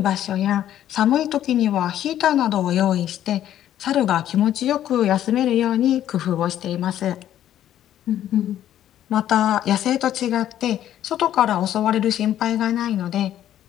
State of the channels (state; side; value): quieter; right; 11.6 dB